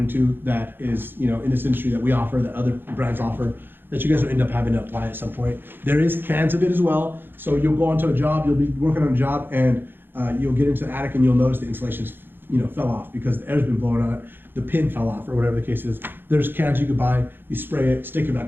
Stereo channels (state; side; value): late; left; 0.099 ms